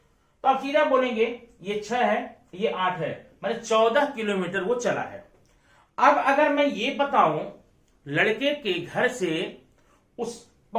तो आप सीधा बोलेंगे ये 6 है, ये 8 है, मतलब 14 किलोमीटर वो चला है। अब अगर मैं ये बताऊं लड़के के घर से उस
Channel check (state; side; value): identical; both; correlation 1.00